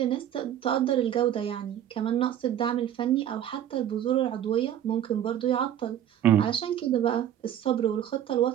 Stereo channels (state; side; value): quieter; left; 10.7 dB